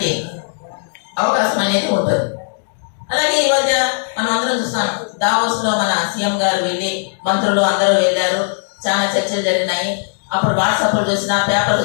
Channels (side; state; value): right; silent; digital silence